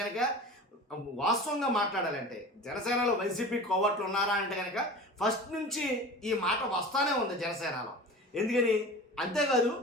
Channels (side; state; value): both; normal; correlation 0.36